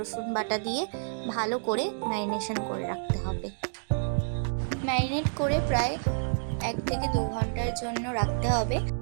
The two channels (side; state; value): left; silent; digital silence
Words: বাটা দিয়ে ভালো করে ম্যারিনেশন করে রাখতে হবে। ম্যারিনেট করে প্রায় 1 থেকে 2 ঘন্টার জন্য রাখতে হবে।